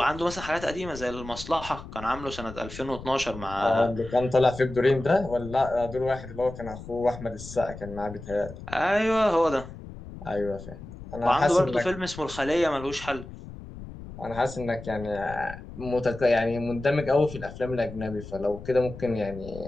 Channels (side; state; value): left; noise; rumble, 13 dB below the sound